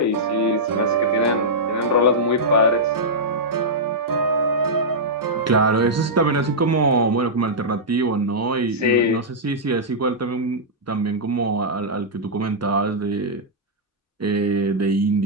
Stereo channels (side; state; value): both; normal; correlation -0.10